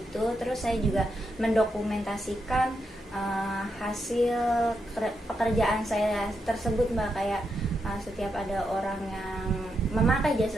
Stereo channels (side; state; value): both; normal; correlation 0.83